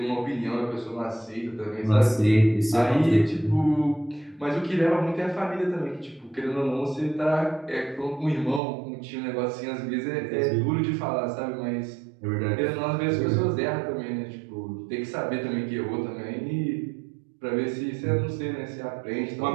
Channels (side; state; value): left; drops out; at 8.6 s